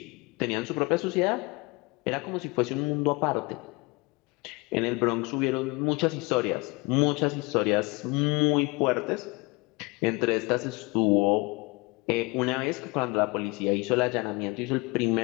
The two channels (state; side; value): quieter; right; 26.1 dB